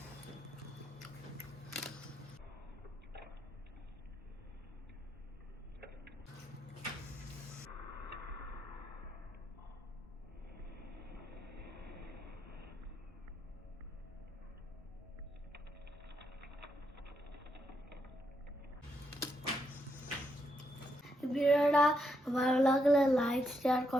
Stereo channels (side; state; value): both; normal; correlation 0.79